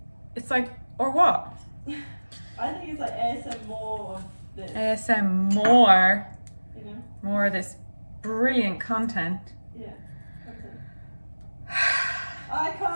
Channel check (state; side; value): inverted; both; correlation -1.00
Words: it's like, or what? I think it's like ASM more of this. ASM more. You know? More of this brilliant content. Yeah. I